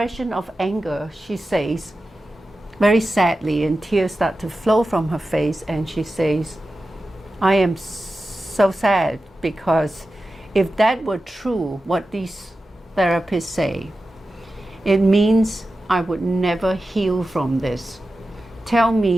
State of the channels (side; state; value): both; normal; correlation 0.93